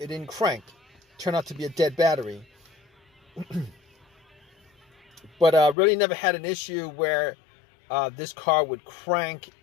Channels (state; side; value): drops out; right; at 5.8 s